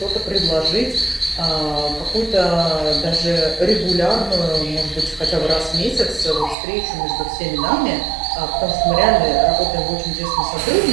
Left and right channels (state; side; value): drops out; left; at 6.6 s